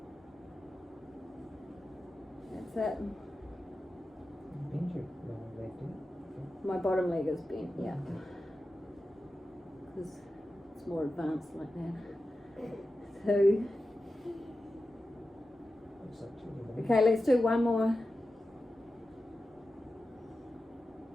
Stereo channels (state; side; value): normal; both; correlation 0.92